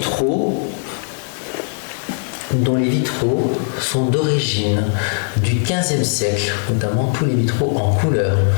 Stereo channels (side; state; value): right; silent; 66 dB below the other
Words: sont d'origine du XVe siècle, notamment tous les vitraux en couleur.